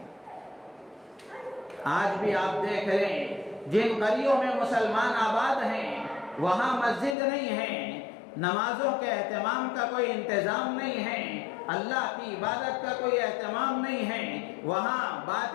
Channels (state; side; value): drops out; right; at 7.2 s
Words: آج بھی آپ دیکھ رہے ہیں جن گلیوں میں مسلمان آباد ہیں وہاں مسجد نہیں ہے، نمازوں کے اہتمام کا کوئی انتظام نہیں ہے، اللہ کی عبادت کا کوئی اہتمام نہیں ہے، وہاں